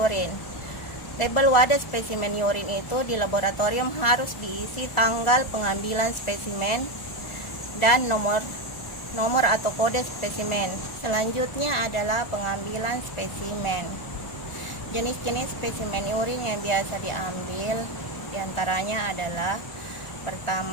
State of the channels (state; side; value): late; right; 1.4 ms